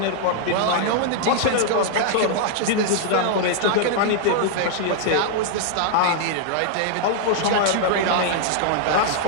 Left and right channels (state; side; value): different; both; correlation -0.01